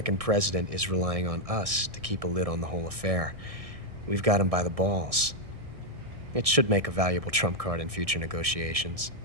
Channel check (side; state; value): left; late; 1.6 ms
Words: president is relying on us to keep a lid on the whole affair. We've got him by the balls. It should make a valuable trump card in future negotiations.